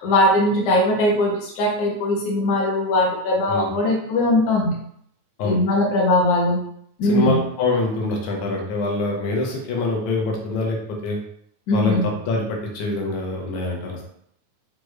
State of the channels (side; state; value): right; late; 9.3 ms